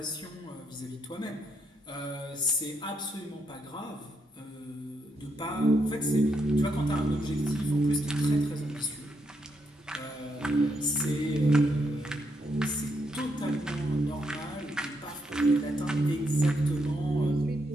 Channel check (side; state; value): both; normal; correlation 0.79